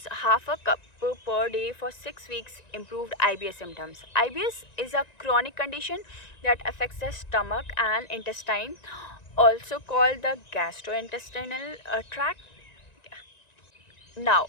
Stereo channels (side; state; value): right; late; 1.9 ms